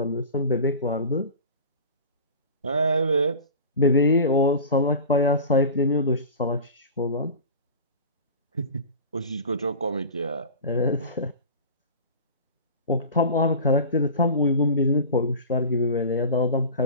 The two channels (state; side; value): inverted; both; correlation -0.34